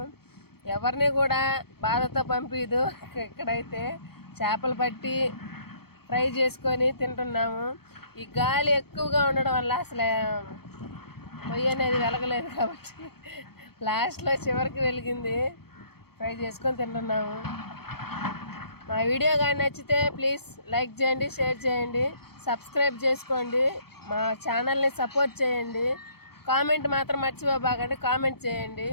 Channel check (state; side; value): late; right; 0.95 ms